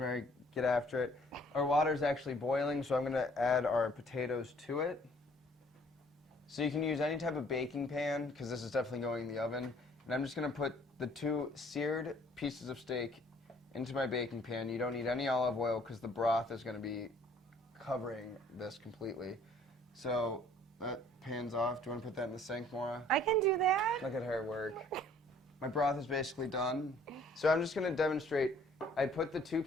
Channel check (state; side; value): normal; both; correlation 0.58